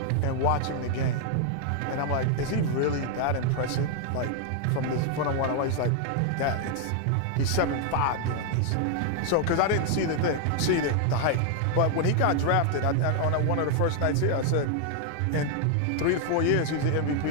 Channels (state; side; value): different; both; correlation 0.00